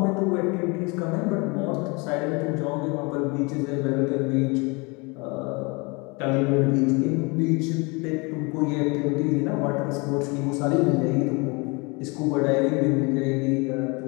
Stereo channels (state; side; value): quieter; right; 28.6 dB